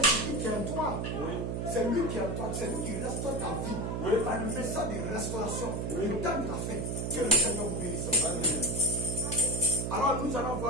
Jésus qui est en toi. Oui. C'est lui qui est en toi. C'est lui qui restaure ta vie. Oui. Par le message de restauration. Oui. Le temps de la fête. Que le Seigneur vous bénisse. Alors nous allons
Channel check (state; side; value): noise; right; hum, 1 dB below the sound